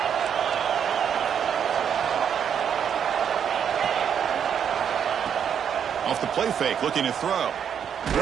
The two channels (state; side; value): quieter; left; 8.2 dB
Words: Off the play fake, looking to throw.